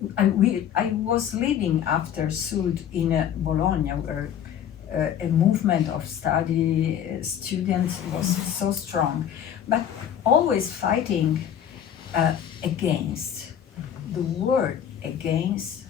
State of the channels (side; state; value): right; quieter; 9.4 dB